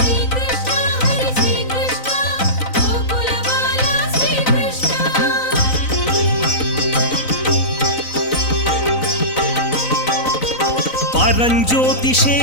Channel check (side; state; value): right; late; 3.9 ms